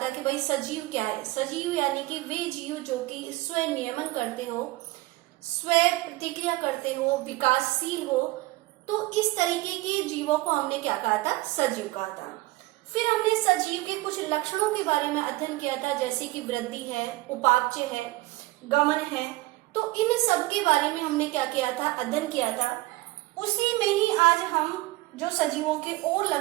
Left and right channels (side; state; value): left; quieter; 19.9 dB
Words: कि भाई सजीव क्या है। सजीव यानी कि वे जीव जो कि स्व नियमन करते हो, स्व प्रतिक्रिया करते हो, विकासशील हो। तो इस तरीके के जीवों को हमने क्या कहा था, सजीव कहा था। फिर हमने सजीव के कुछ लक्षणों के बारे में अध्ययन किया था, जैसे कि वृद्धि है, उपापचय है, गमन है। तो इन सब के बारे में हमने क्या किया था, अध्ययन किया था। उसी में ही आज हम जो सजीवों के और